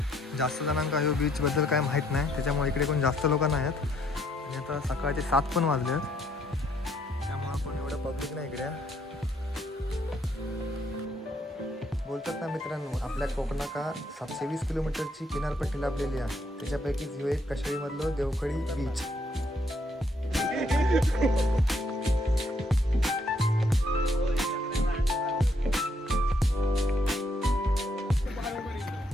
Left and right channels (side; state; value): both; normal; correlation 0.71